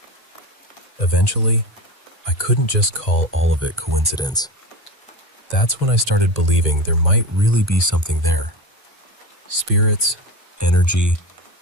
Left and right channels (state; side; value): normal; both; correlation 0.26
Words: Eventually, I couldn't just call all of it coincidence. That's when I started believing there might really be something there. Spirits, energy,